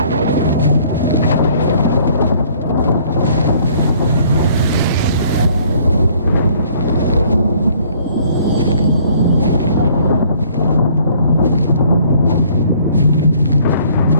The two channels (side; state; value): both; inverted; correlation -0.59